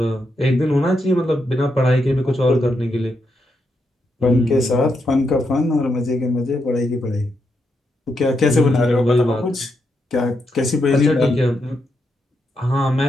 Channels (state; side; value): normal; both; correlation 0.82